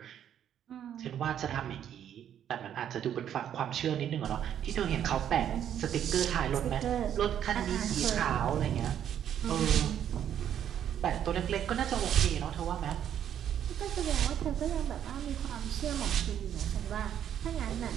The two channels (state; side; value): quieter; left; 9.8 dB